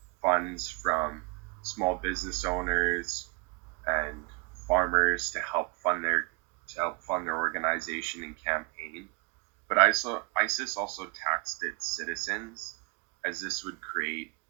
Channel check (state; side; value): quieter; left; 30.7 dB